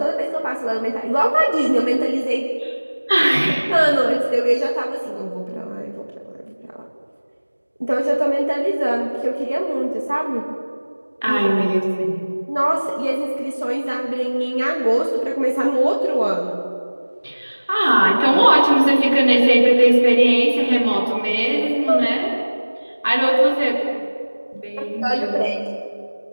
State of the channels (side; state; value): both; inverted; correlation -1.00